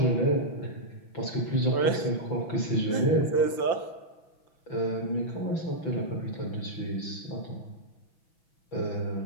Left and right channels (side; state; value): right; late; 5.8 ms